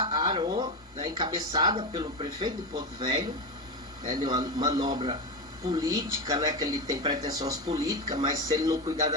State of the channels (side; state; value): both; normal; correlation 0.16